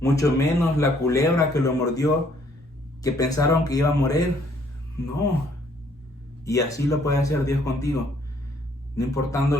Mucho menos la culebra que lo mordió, que pensaron que iba a morir. No. Y así lo puede hacer Dios contigo. No importando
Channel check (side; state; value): both; normal; correlation 0.65